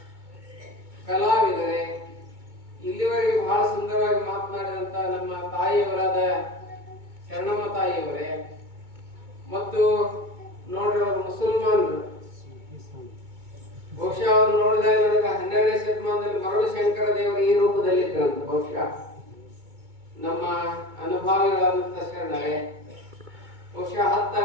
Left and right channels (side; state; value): left; late; 2.2 ms